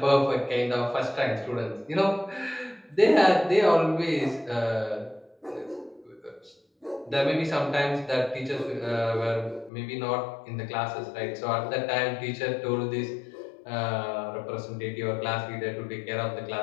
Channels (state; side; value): drops out; right; at 9.7 s